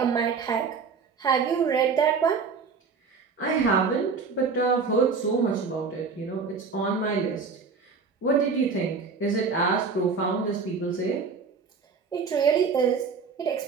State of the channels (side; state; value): left; quieter; 5.1 dB